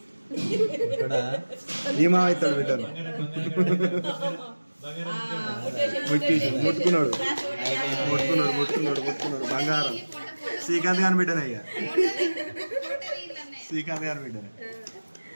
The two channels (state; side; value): inverted; both; correlation -1.00